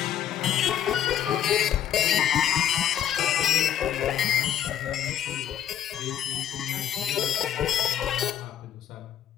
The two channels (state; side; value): quieter; right; 10.2 dB